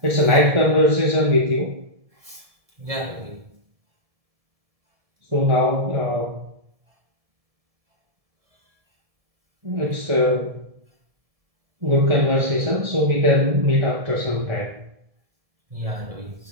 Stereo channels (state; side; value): late; left; 1.7 ms